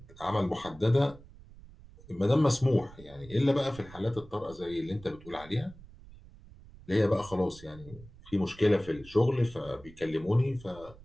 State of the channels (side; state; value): right; noise; rumble, 20 dB below the sound